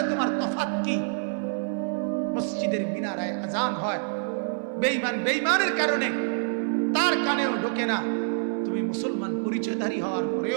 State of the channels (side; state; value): left; silent; digital silence